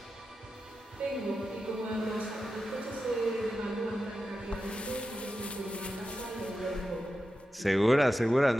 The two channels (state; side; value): normal; both; correlation 0.91